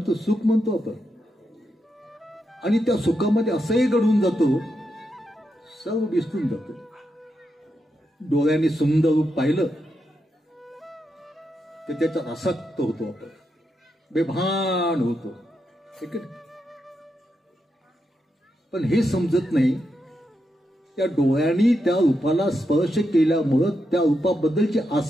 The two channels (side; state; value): both; normal; correlation 0.84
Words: सुख म्हणतो आपण. आणि त्या सुखामध्ये असंही घडून जातो, सर्व विसरून जातो. डोळ्याने सुंदर रूप पाहिलं तर त्याचा आसक्त होतो, आपण बेभान होतो. ठीक आहे. पण हे समजत नाही, त्या डोळ्यांनी त्या रूपाला स्पर्श केल्यामुळं त्या रूपाबद्दलची